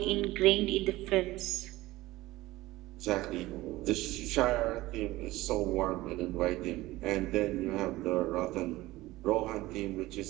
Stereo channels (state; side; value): quieter; left; 18.3 dB